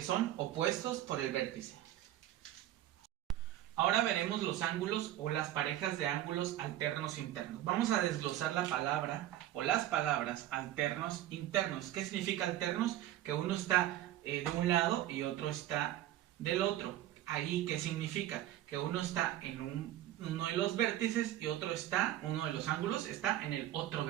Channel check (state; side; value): quieter; left; 13.4 dB